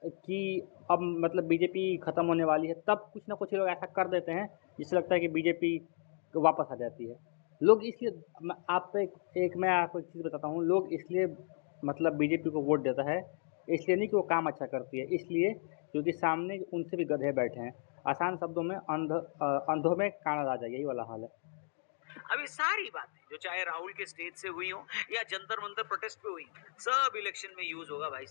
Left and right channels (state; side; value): silent; right; 55 dB below the other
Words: कि अब मतलब बीजेपी ख़त्म होने वाली है, तब कुछ ना कुछ लोग ऐसा कर देते हैं जिससे लगता है कि बीजेपी वापस आ जाती है। लोग इसलिए, मैं आपको एक चीज़ बताता हूँ, लोग इसलिए मतलब बीजेपी को वोट देता है, इसलिए नहीं कि वो काम अच्छा करती है, इसलिए क्योंकि सामने उनसे भी गधे बैठे हैं। आसान शब्दों में अंधों में काना राजा, यही वाला हाल है। अब ये सारी बातें जो चाहे राहुल के स्टेज से हुई हो या जंतर मंतर प्रोटेस्ट पे हुई, सब इलेक्शन में यूज होगा भाई